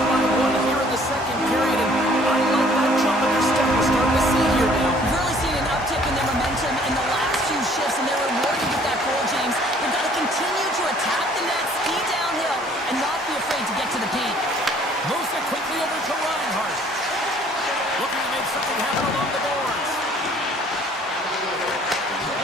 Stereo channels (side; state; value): both; normal; correlation 0.57